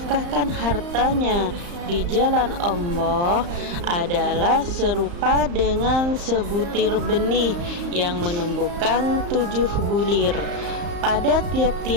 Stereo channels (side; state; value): left; late; 35 ms